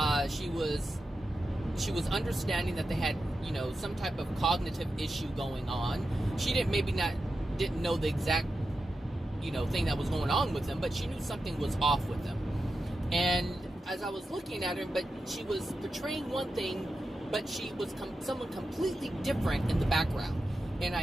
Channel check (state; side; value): normal; both; correlation 0.90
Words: She was understanding that they had, some type of cognitive issue going on. She didn't know the exact, thing that was going on with them, but she knew something was off with them. And as I was looking at her, but she was portraying one thing, but she was someone completely different in the background. And